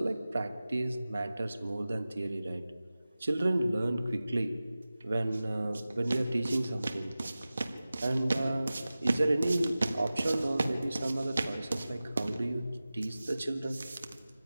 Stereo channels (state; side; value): inverted; both; correlation -0.96